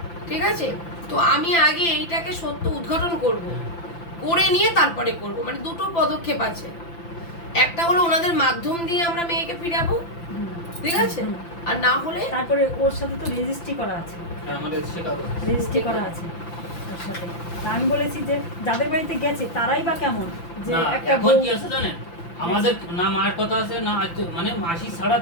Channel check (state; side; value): late; right; 5.9 ms